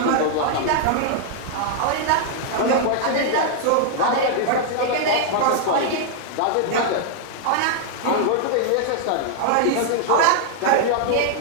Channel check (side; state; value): both; different; correlation -0.01